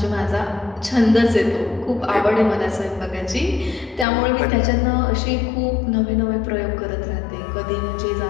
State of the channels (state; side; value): drops out; right; at 4.0 s